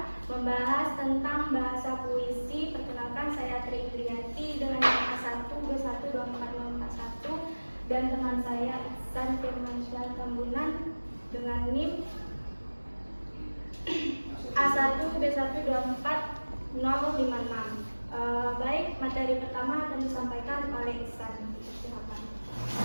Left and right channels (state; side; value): inverted; both; correlation -1.00